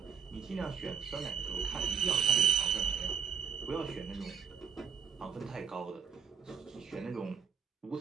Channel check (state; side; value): quieter; left; 6.6 dB